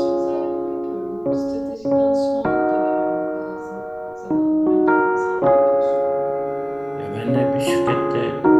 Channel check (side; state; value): right; noise; rumble, 30 dB below the sound